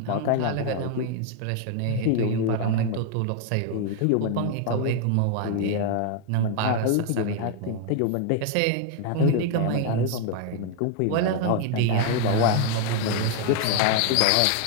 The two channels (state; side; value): different; both; correlation 0.00